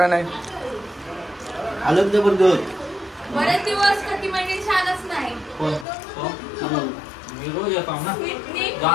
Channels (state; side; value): drops out; right; at 5.9 s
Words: आलं जबरदस्त बरेच दिवस कधी म्हणजे छानच नाही. कोण? तो? मी रोज येतो ना. स्मितनी